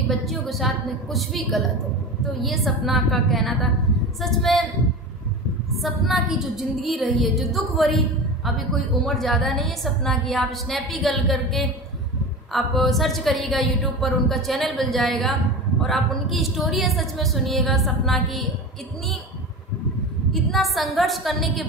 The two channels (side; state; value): both; normal; correlation 0.29